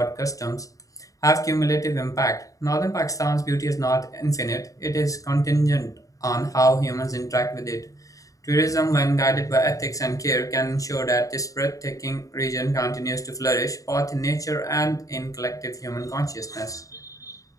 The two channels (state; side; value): late; right; 0.16 ms